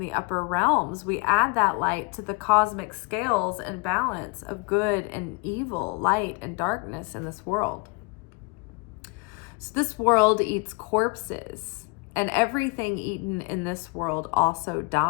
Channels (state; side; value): quieter; right; 29.4 dB